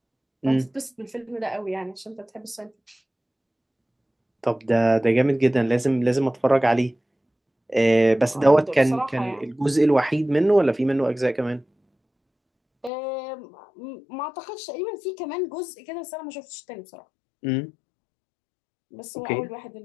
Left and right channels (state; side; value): drops out; right; at 12.9 s